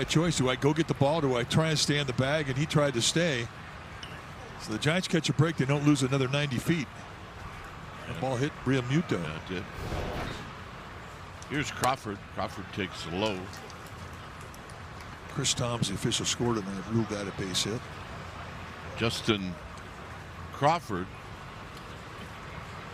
choice. Do I go get the ball? Do I try and stay in the bag? And he tried to stay. So the Giants catch a break. They don't lose another 90 feet. The ball hit Realmuto. Yeah, it did. Here's Crawford. Crawford takes low. Chris Tom's the official scored and they ruled that a base hit. Justin Crawford,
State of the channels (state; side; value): identical; both; correlation 1.00